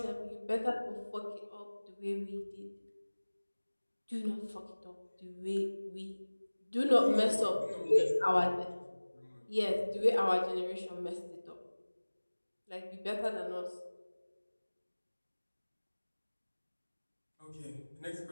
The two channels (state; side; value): inverted; both; correlation -1.00